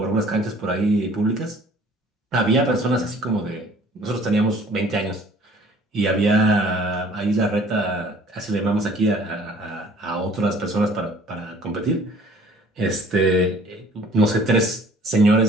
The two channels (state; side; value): normal; both; correlation 0.53